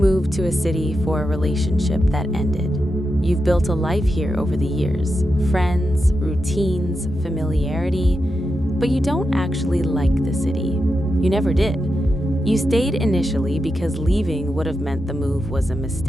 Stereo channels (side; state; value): both; normal; correlation 0.88